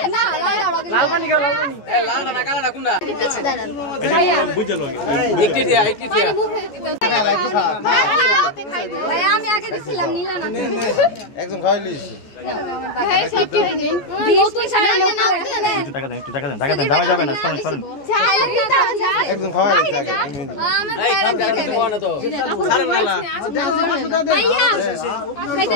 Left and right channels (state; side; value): late; right; 14 ms